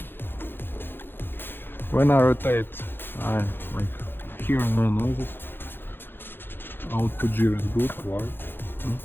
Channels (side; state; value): right; late; 0.10 ms